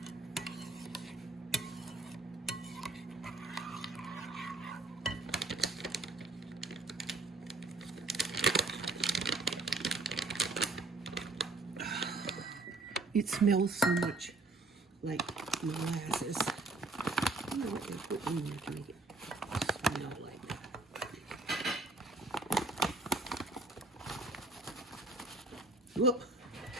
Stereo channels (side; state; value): left; quieter; 3.1 dB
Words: It smells so much like molasses. I don't know what they put in there to make it smell like that. Whoop!